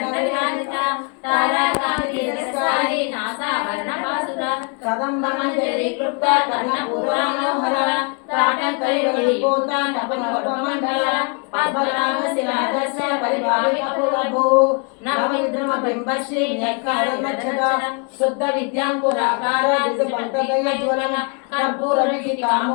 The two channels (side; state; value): right; quieter; 37.0 dB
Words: తారకాంతి రసాయి నాసావరణ పాసుర కదంబ మంజరి క్లుప్త కర్ణపూర్వమనోహర తాటంకైవలిపోత తపనవపమండల పద్మనాభ శిలాదర్శ పరిభావిక పురభూ నవవిద్రమ బింబశ్రీ న్యకారమచ్చద శుద్ధ విద్యాంకురాకార దిశపంకగయ జ్వలన కర్పూర విధి